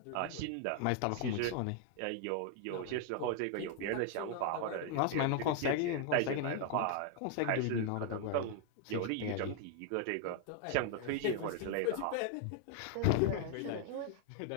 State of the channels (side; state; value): both; different; correlation 0.00